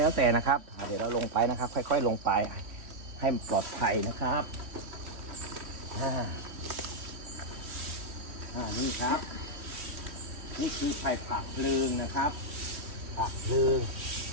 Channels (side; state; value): left; late; 3.1 ms